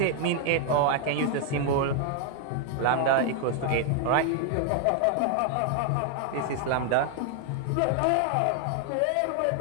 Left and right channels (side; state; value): both; different; correlation 0.00